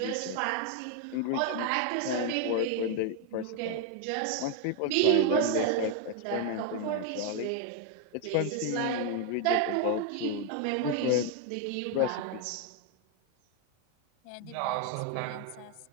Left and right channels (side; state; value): both; different; correlation 0.00